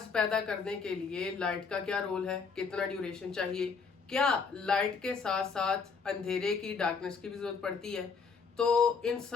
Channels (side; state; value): right; quieter; 5.3 dB